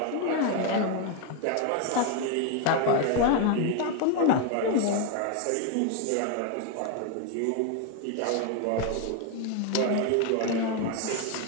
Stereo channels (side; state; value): both; different; correlation 0.01